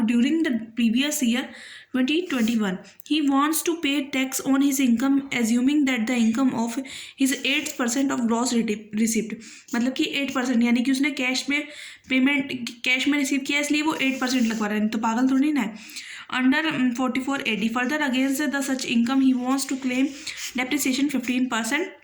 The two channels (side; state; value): both; identical; correlation 1.00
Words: during the previous year 2021. He wants to pay tax on his income assuming that the income of his 8% of gross receipt, मतलब कि 8%, यानी कि उसने cash में payment cash में receive किया इसलिए वो 8% लगवा रहा है, तो पागल थोड़ी ना है। Under 44 AD further against the such income he wants to claim depreciation 15%।